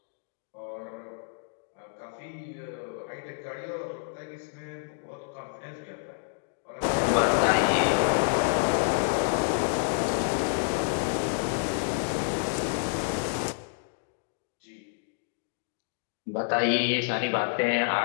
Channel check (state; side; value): silent; right; digital silence